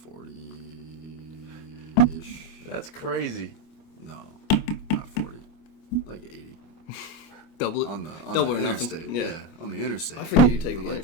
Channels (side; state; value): right; late; 25 ms